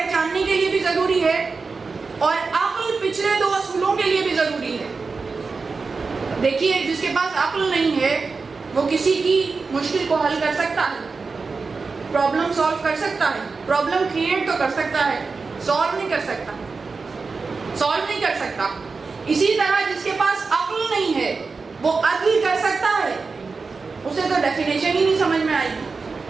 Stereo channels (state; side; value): quieter; left; 4.5 dB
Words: کے لیے بھی ضروری ہے، اور عقل پچھلے دو اصولوں کے لیے بھی ضروری ہے. دیکھیے، جس کے پاس عقل نہیں ہے وہ کسی کی مشکل کو حل کر سکتا ہے، پرابلم سالو کر سکتا ہے، پرابلم کریٹ تو کر سکتا ہے، سالو نہیں کر سکتا، سالو نہیں کر سکتا. اسی طرح جس کے پاس عقل نہیں ہے وہ عدل کر سکتا ہے، اسے تو ڈیفینیشن ہی نہیں سمجھ میں آئے گی.